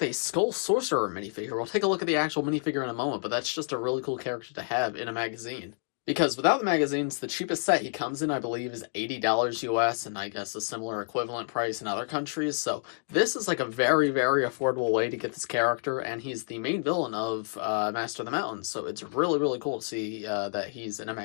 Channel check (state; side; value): silent; right; 59 dB below the other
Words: a Skull Sorcerer minifigure. We'll take a look at the actual minifigure in a moment, but that's just a really cool character to have in a magazine. Because without the magazines, the cheapest set he comes in, I believe, is $80 US, and I guess a similar equivalent price in other countries. So this is like a very, very affordable way to get this character, and he's the main villain of Master of the Mountains. So it's really, really cool to see that he's in a